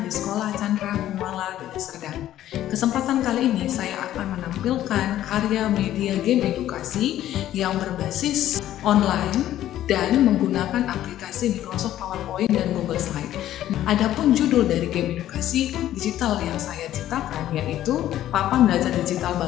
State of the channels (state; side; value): quieter; right; 12.8 dB